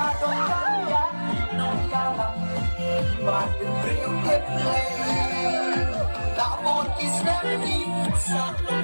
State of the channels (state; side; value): inverted; both; correlation -1.00